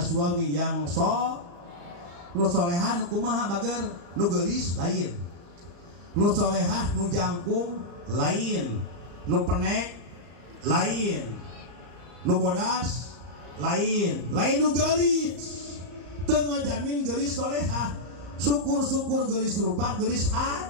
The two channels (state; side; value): late; left; 34 ms